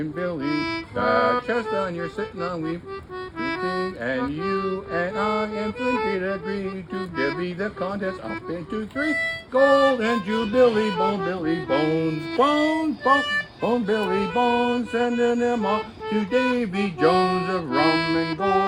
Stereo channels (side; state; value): both; identical; correlation 1.00